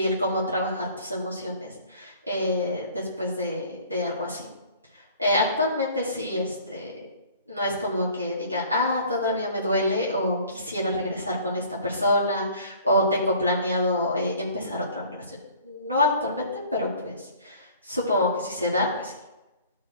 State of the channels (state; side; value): inverted; both; correlation -0.51